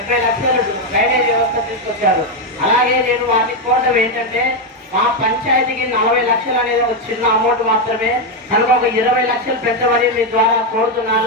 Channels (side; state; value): both; normal; correlation 0.05